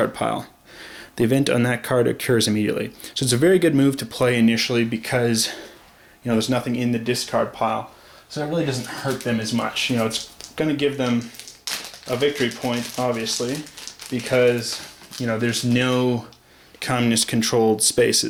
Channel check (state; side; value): identical; both; correlation 1.00